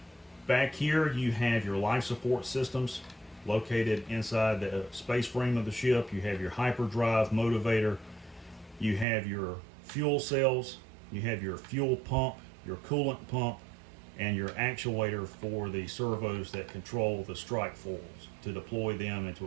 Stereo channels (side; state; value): left; drops out; at 9.1 s